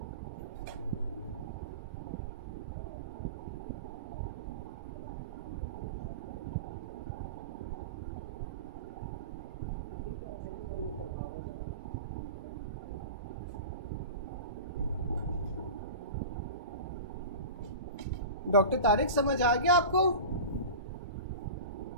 डॉक्टर तारिक समझ आ गया आपको?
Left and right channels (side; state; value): both; inverted; correlation -0.31